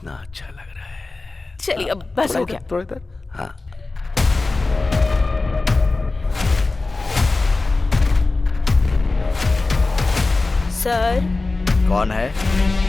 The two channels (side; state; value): right; quieter; 3.4 dB